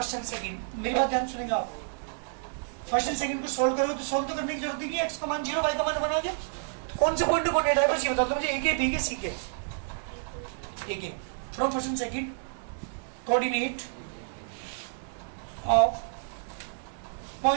एंड सेकंड, मेरी बात ध्यान सुनेंगे आप। फर्स्ट एंड सेकंड को सोल्व करो तो सोल्व तो करने की जरूरत नहीं है। एक्स का मान 0, वाई का मान 1 आ गया। कौन से पॉइंट को कोऑर्डिनेट है बस ये बता दो मुझे। एक है, बी के, सी के। एक है from first and second coordinate of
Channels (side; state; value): left; silent; digital silence